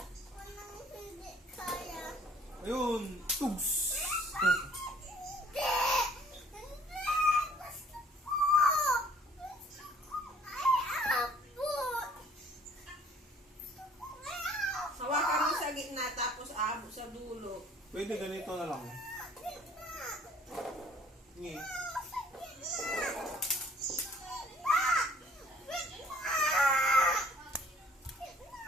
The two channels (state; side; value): normal; both; correlation 0.57